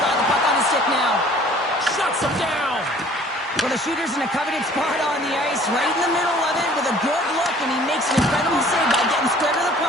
the puck on his stick now. Shuts him down. Well, the shooter's in a coveted spot on the ice, right in the middle of it with a good look, and he makes an incredible save by getting square to the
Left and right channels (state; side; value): normal; both; correlation 0.53